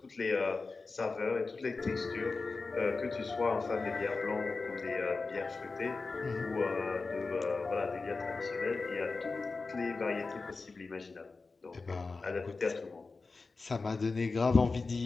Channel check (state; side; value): quieter; right; 4.0 dB